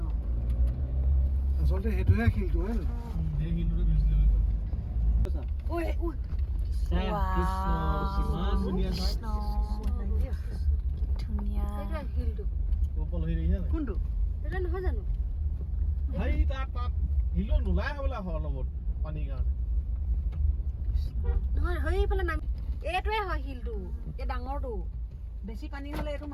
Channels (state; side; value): identical; both; correlation 1.00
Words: আচলতে সেইটোহে শিলটো হয় ন সেই শিলটোতে গৈছিলে ঐ কিমান ধুনীয়া চাই ধুনীয়া শিলটো ওপৰ হৈ দেখিছা নাই কোনটো এটা নহয় জানো হাই তাত শিলো নোলাই হ'বলা লগত পানীৰ কাৰণে নহয় সেইফালে নামি এইটোৱে হয় শিলটো এই ডাঙৰটো বেছি পানী হ'লে এইটো